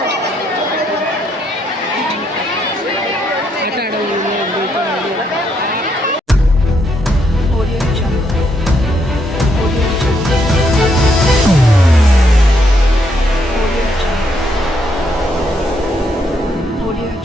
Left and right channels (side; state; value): both; normal; correlation 0.75